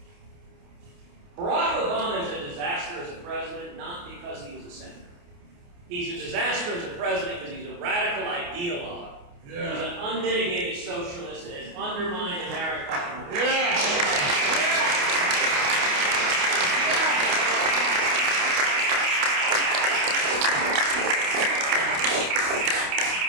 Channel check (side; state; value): left; late; 29 ms